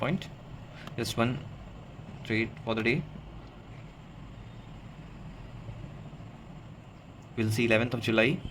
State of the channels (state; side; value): identical; both; correlation 1.00